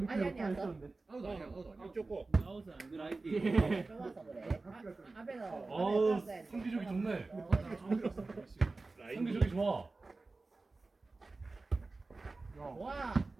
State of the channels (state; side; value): quieter; left; 3.5 dB